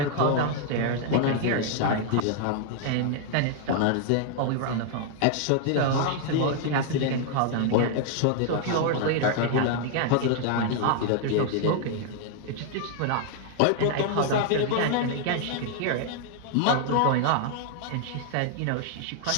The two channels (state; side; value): different; both; correlation 0.00